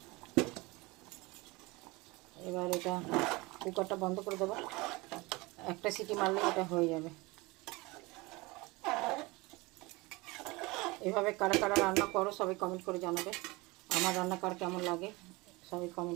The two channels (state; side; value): quieter; left; 23.6 dB